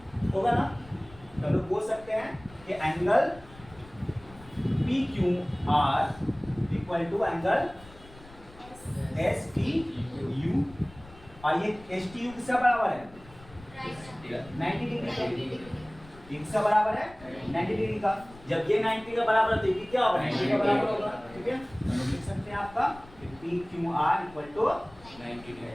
होगा ना। तो हम लोग बोल सकते हैं कि angle PQR equal to angle STU, और ये STU किसका बराबर है, 90 डिग्री का। किसका बराबर है, 90 डिग्री का। जब ये 90 का बराबर है तो ये क्या होगा, 90 का बराबर होगा, ठीक है। तो हम लिख सकते हैं आपका PQR इक्वल टू 90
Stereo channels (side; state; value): left; noise; rumble, 21 dB below the sound